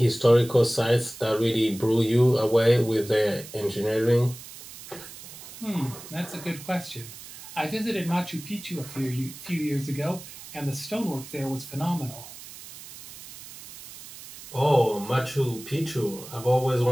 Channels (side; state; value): right; noise; hiss, 15 dB below the sound